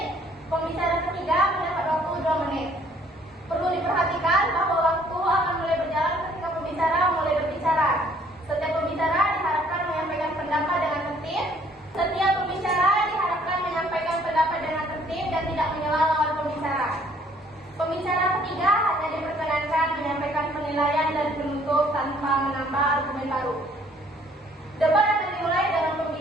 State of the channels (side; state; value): both; normal; correlation 0.60